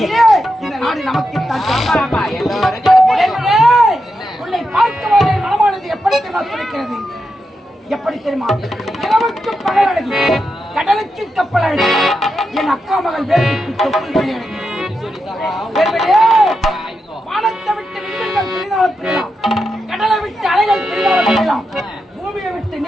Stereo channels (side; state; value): both; normal; correlation 0.87